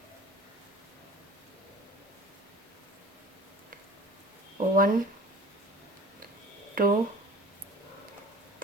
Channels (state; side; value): normal; both; correlation 0.43